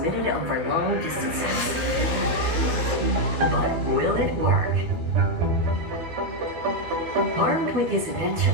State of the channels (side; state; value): left; late; 13 ms